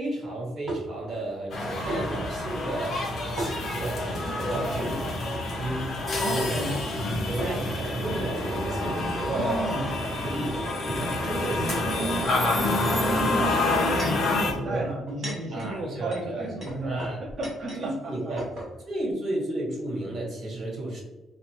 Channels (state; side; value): normal; both; correlation 0.71